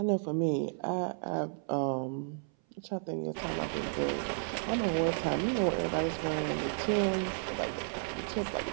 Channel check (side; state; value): left; silent; 56 dB below the other